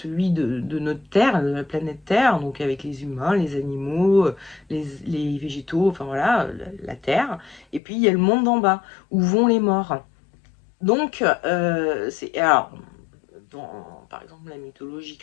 de notre Terre, de la planète Terre, donc avec les humains, les animaux, les végétaux, enfin voilà, la Terre. Et puis il y a le monde d'en bas, où vont les morts. Donc, alors, par exemple, la mythologie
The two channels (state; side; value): drops out; right; at 7.8 s